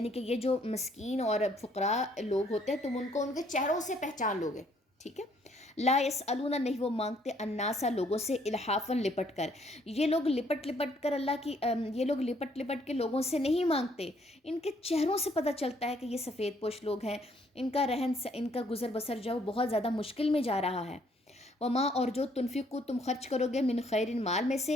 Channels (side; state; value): both; normal; correlation 0.66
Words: کہ یہ جو مسکین اور فقراء لوگ ہوتے ہیں تم ان کو ان کے چہروں سے پہچان لوگے، ٹھیک ہے۔ لا یسألون نہیں وہ مانگتے، الناسا لوگوں سے، الحافاً لپٹ کر، یہ لوگ لپٹ لپٹ کر یہ لوگ لپٹ لپٹ کے لوگوں سے نہیں مانگتے، ان کے چہروں سے پتہ چلتا ہے کہ یہ سفید پوش لوگ ہیں، ان کا ان کا گزر بسر جو بہت زیادہ مشکل میں جا رہا ہے۔ وما اور جو تنفقو تم خرچ کرو گے، من خیرن مال میں